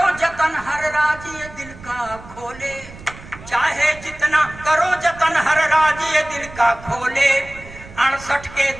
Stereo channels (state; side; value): noise; right; rumble, 17 dB below the sound